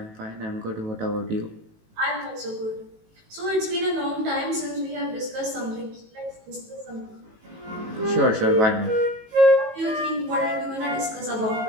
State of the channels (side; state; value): left; late; 18 ms